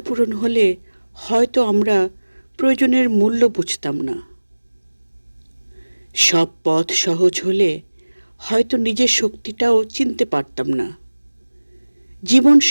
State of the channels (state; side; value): inverted; both; correlation -1.00